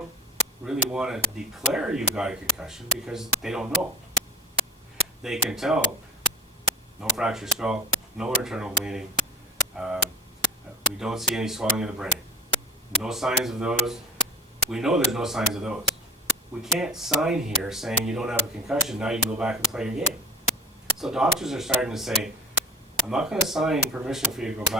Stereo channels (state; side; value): normal; both; correlation 0.34